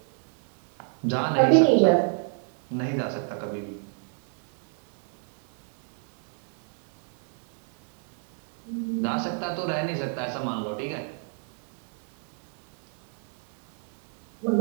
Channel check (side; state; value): left; silent; 58 dB below the other